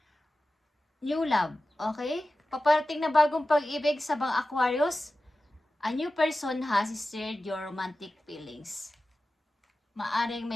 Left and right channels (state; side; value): normal; both; correlation 0.95